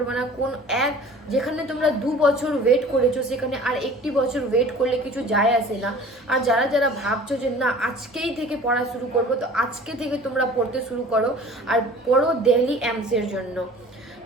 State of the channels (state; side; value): normal; both; correlation 0.46